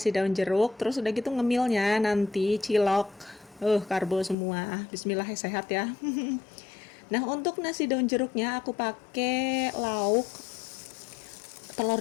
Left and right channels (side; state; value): right; drops out; at 4.4 s